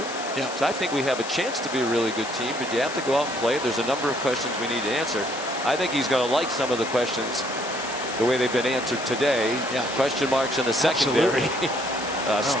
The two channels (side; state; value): left; noise; hiss, 11 dB below the sound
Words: Yeah. So I think we have a chance to be a really good team, but you have to go out and play. There's a number of questions we need to answer. I think he's going to like some of the questions the way they've been answered today. Yeah. Question marks in the secondary.